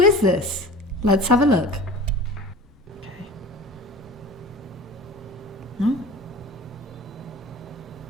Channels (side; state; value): both; normal; correlation 0.39